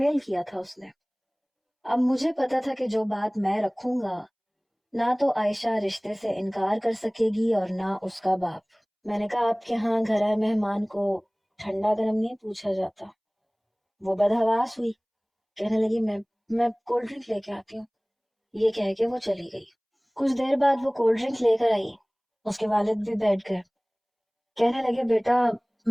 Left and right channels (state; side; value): identical; both; correlation 1.00